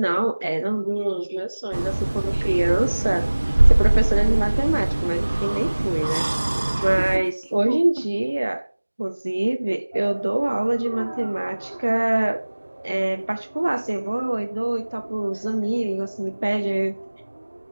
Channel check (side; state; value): both; inverted; correlation -1.00